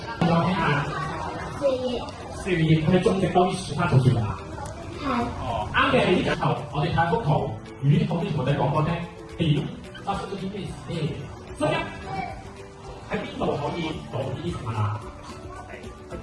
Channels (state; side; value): identical; both; correlation 1.00